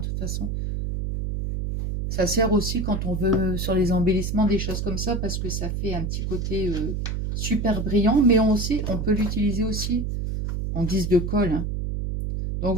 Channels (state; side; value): noise; right; hum, 2 dB below the sound